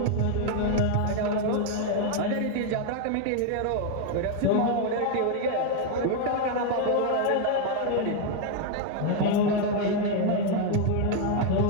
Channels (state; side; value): different; both; correlation 0.01